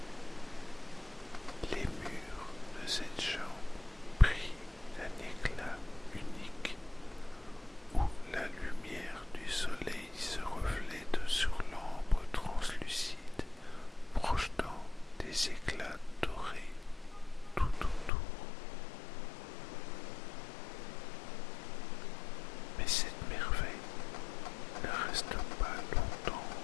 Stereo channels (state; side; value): drops out; right; at 18.1 s